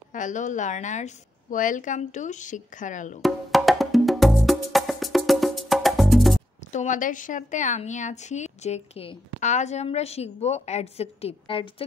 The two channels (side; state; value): both; normal; correlation 0.81